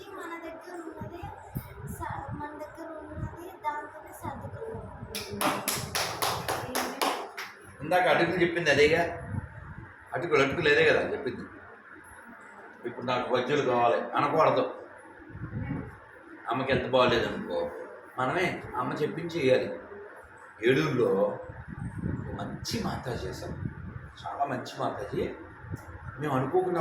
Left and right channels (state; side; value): identical; both; correlation 1.00